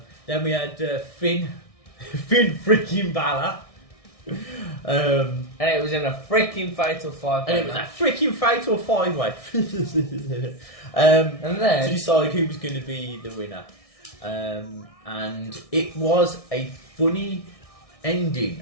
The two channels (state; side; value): late; right; 1.6 ms